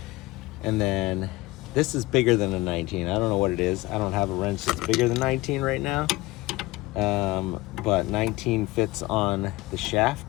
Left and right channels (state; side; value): quieter; right; 20.0 dB